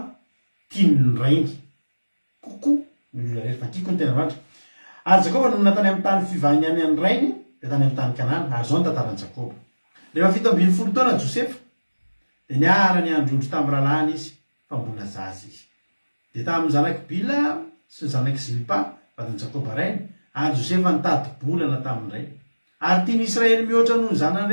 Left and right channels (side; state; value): both; inverted; correlation -1.00